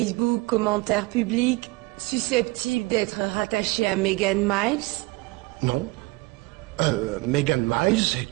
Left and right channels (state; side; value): quieter; left; 24.1 dB